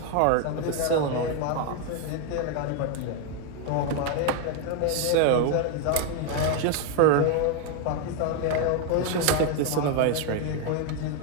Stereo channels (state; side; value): different; both; correlation 0.01